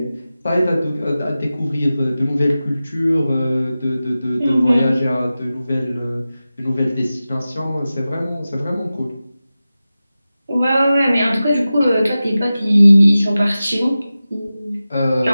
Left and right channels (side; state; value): both; inverted; correlation -0.95